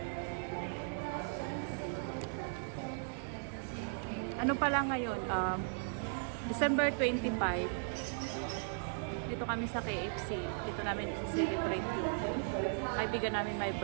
Ano pala ngayon? December 25. Dito kami sa KFC. Dito namin i-celebrate yung kaibigan namin my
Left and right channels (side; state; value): left; silent; digital silence